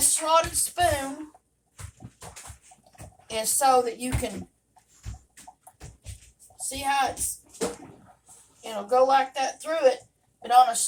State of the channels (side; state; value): both; identical; correlation 1.00